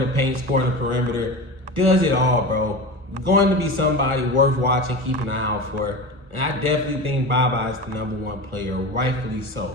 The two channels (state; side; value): late; left; 1.4 ms